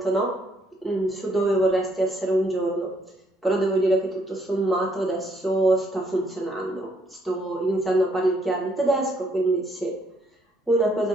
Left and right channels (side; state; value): both; normal; correlation 0.70